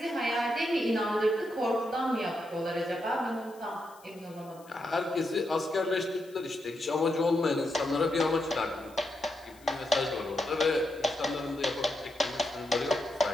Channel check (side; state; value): left; noise; hiss, 26 dB below the sound